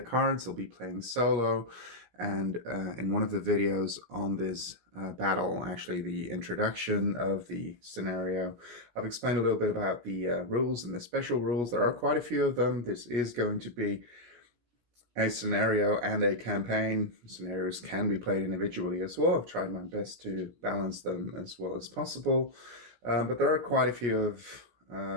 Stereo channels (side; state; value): left; late; 17 ms